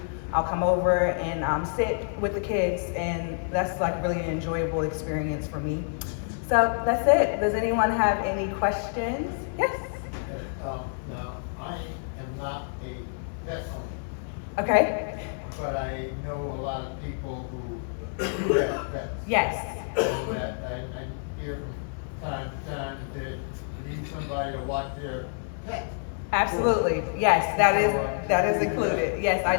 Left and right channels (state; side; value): silent; right; digital silence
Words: I'll come over and sit with the kids, and that's like really an enjoyable experience for me. So that's it. Does anyone have any questions? Yes? Now, I am not a pet owner. Okay. But I know a lot of people who do have pets. Yes. And that I hear from time to time that they need somebody to watch their pet. Absolutely. Yes, that is included. Yes, I